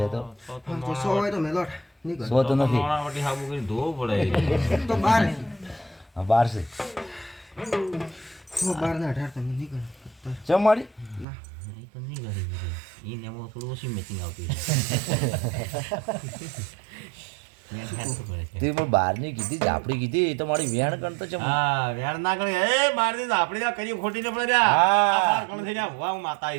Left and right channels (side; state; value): left; drops out; at 11.2 s